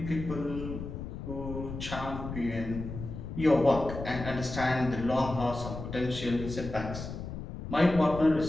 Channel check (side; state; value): left; noise; rumble, 8 dB below the sound